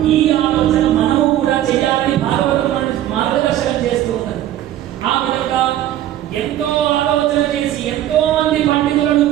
ఈ ఆలోచన మనము కూడా చేయాలని భాగవతం మార్గదర్శనం చేస్తూ ఉన్నది. ఆ విధంగా ఎంతో ఆలోచన చేసి ఎంతో మంది పండితులను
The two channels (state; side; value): quieter; left; 12.7 dB